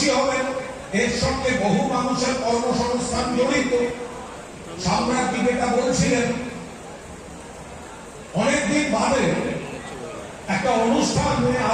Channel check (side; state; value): both; identical; correlation 1.00